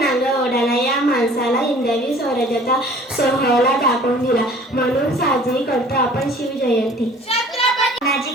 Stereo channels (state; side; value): normal; both; correlation 0.50